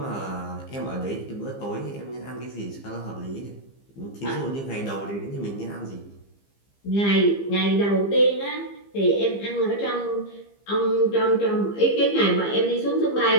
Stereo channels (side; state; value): right; late; 15 ms